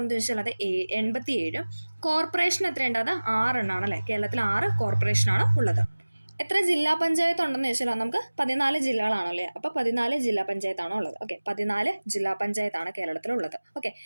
ചോദിച്ചാൽ അത് 87. കോർപ്പറേഷൻ എത്രയുണ്ട്? അത് 6 എണ്ണമാണ് അല്ലേ. കേരളത്തിൽ 6 കോർപ്പറേഷനാണ് ഉള്ളത്. എത്ര ജില്ലാ പഞ്ചായത്ത് ഉണ്ടെന്ന് ചോദിച്ചാൽ നമുക്ക് 14 ജില്ലകളാണല്ലേ. അപ്പോൾ 14 ജില്ലാ പഞ്ചായത്താണോ ഉള്ളത്. ഓക്കെ. 14 ജില്ലാ പഞ്ചായത്താണ് കേരളത്തിലുള്ളത്. ഓക്കെ.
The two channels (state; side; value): inverted; both; correlation -1.00